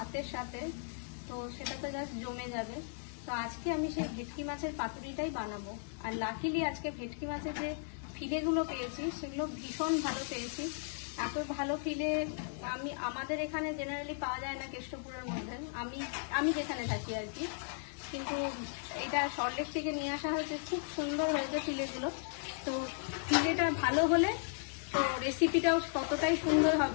সাথে, তো সেটা তো জাস্ট জমে যাবে। তো আজকে আমি সেই ভেটকি মাছের পাতুরিটাই বানাবো। আর লাকিলি আজকে ভেটকি মাছের যে ফিলেগুলো পেয়েছি সেগুলো ভীষণ ভালো পেয়েছি। এত ভালো ফিলে আমাদের এখানে জেনারেলি পাওয়া যায় না কেষ্টপুরের মধ্যে, আমি যেখানে থাকি আর কি। কিন্তু এটা সল্টলেক থেকে নিয়ে আসা হয়েছে, খুব সুন্দর হয়েছে ফিলেগুলো। তো ফিলেটা ভালো হলে তো রেসিপিটাও ততটাই সুন্দর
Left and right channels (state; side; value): silent; right; digital silence